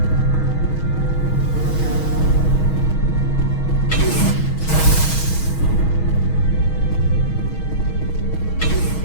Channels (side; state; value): right; late; 6.3 ms